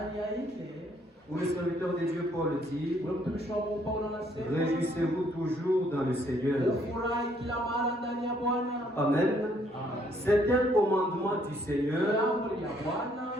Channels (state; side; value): normal; both; correlation 0.67